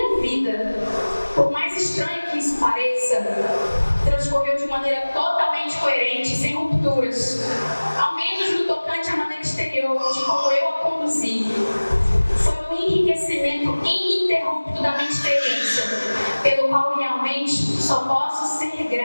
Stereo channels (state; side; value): inverted; both; correlation -1.00